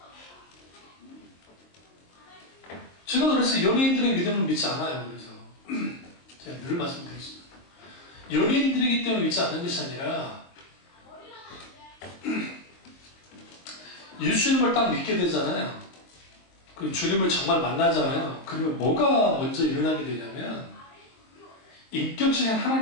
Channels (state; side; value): late; right; 23 ms